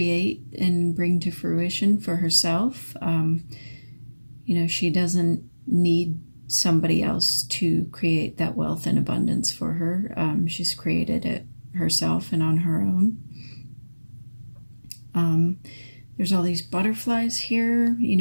and bring to fruition for herself. You know, she doesn't need somebody else to create that wealth and abundance for her. She's created it herself and on her own. There's all these butterflies here. You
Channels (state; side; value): inverted; both; correlation -1.00